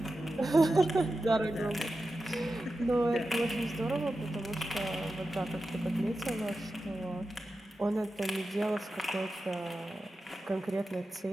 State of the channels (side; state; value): both; normal; correlation 0.92